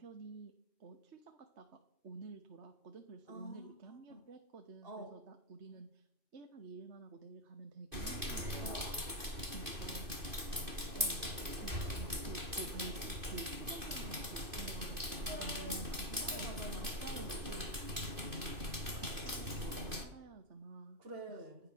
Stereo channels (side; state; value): left; late; 2.5 ms